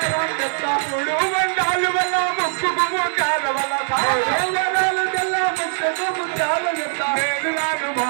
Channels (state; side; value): silent; left; digital silence